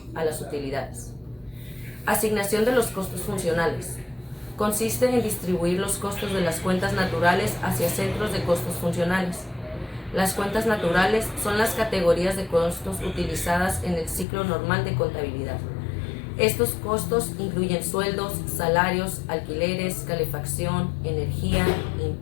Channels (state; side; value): drops out; right; at 14.2 s